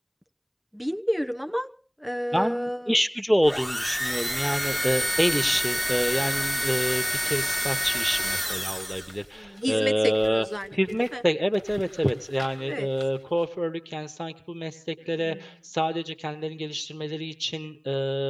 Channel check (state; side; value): identical; both; correlation 1.00